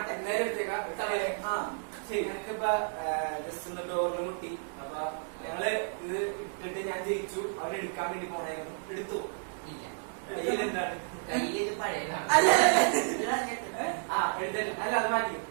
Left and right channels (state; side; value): silent; left; 57 dB below the other